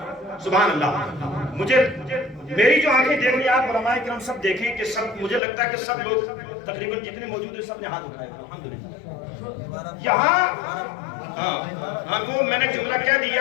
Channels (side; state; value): right; drops out; at 5.4 s